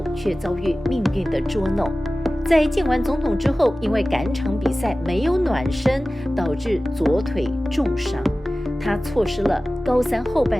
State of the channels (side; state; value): both; normal; correlation 0.96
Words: 却遭遇命运的捉弄。在见完总统之后，因为赶场比赛没有暖身，导致左腿重伤，他错失了高3后半